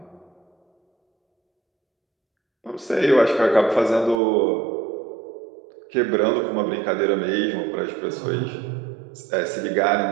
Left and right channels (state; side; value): drops out; left; at 4.2 s